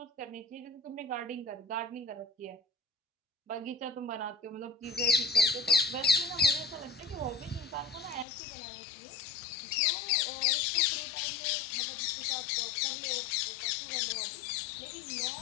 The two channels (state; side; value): drops out; right; at 8.2 s